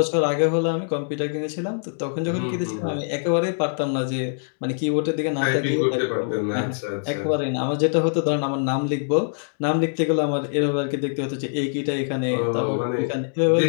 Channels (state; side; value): silent; right; digital silence